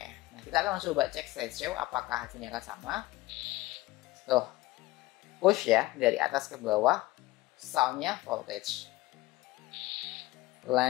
Nah, kita akan coba cek slideshow apakah hasilnya akan sama. Tuh, push ya, dari atas ke bawah, soundnya voltage.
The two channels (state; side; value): quieter; right; 18.7 dB